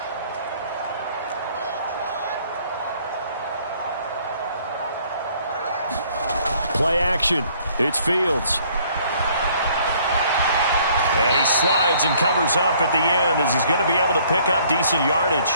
Play action. It's Fields. And he slides and covers up at the end as he's going to be able to pick up decent yardage.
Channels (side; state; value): both; inverted; correlation -0.61